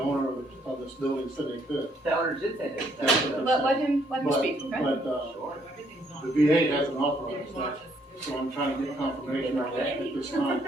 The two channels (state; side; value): normal; both; correlation 0.69